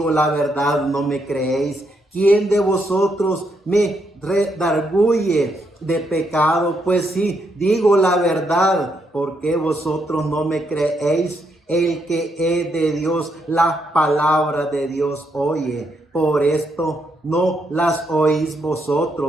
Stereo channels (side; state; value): both; normal; correlation 0.77